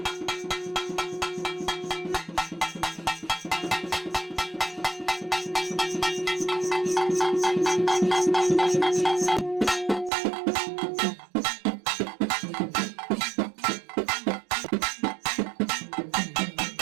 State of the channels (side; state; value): left; drops out; at 10.1 s